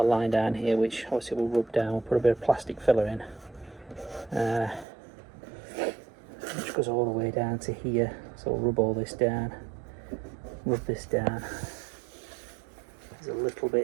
line down here which obviously we'll rub down. We'll put a bit of plastic filler in, which goes all the way down to here. So we'll rub all this down, rub this down. There's a little bit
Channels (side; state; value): left; drops out; at 4.9 s